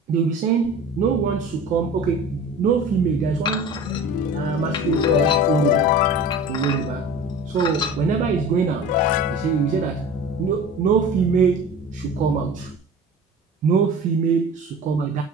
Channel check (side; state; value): both; normal; correlation 0.38